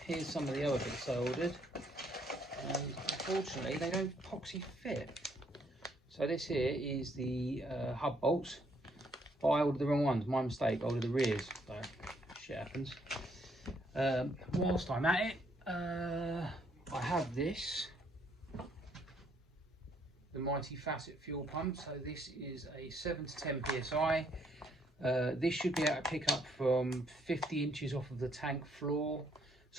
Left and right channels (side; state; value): both; normal; correlation 0.69